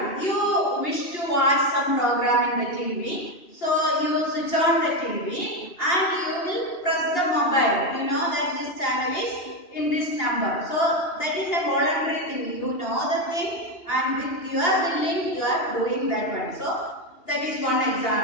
you wish to watch some program in the TV. So, you switch on the TV and you will press the mobile. You know that this channel is in this number. So, that is a voluntary thing. You know the thing and with your willing you are doing that one. So, that is one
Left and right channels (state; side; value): late; right; 2.8 ms